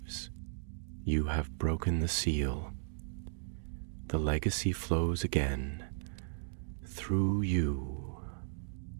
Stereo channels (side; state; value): left; silent; digital silence